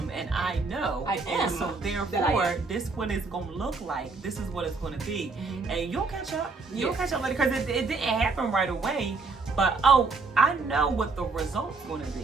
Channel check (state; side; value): quieter; left; 4.0 dB